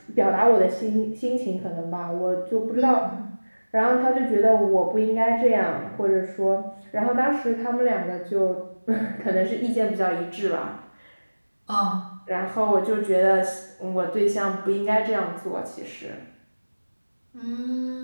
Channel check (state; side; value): inverted; both; correlation -1.00